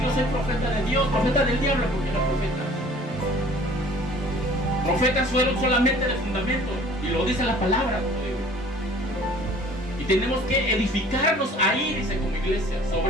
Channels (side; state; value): both; normal; correlation 0.51